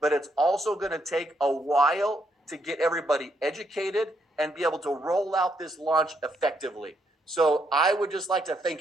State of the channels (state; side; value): normal; both; correlation 0.75